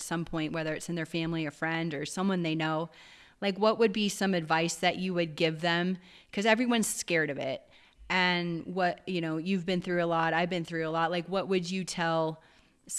some point, whether it's in their family, a friend, or someone they know. Like, what would be some advice that you would give them? Because everyone's scared of it. And you've been through a lot. I've been through a lot. Like, what would you tell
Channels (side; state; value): both; identical; correlation 1.00